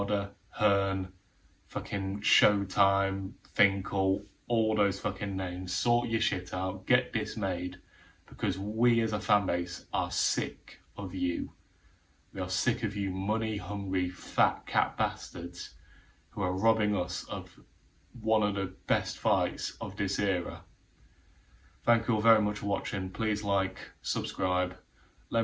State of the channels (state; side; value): identical; both; correlation 1.00